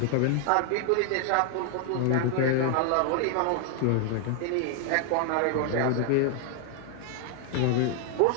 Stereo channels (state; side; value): different; both; correlation 0.00